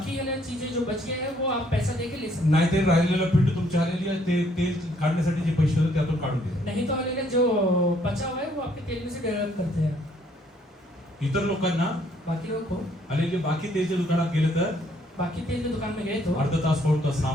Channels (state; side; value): normal; both; correlation 0.66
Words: वाले चीजें जो बच गए हैं वो आप पैसा देके ले सकते नाही ते राहिलेलं पिंड तुमच्या हालेलुया ते तेल काढण्यासाठी जे पैसे होते त्यातून काढून हैं. घ्या. नहीं तो वाले जो बचा हुआ है वो आपके तेल में से डेवलप करते हैं. इतर लोकांना बाकी लोग को हालेलुया बाकी तेलच्या दुकानात गेले तर बाकी तेल की दुकान में गए तो अर्धा तास पाऊण तास